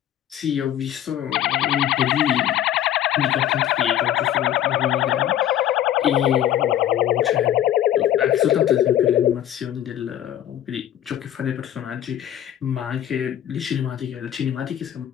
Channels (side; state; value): right; quieter; 11.4 dB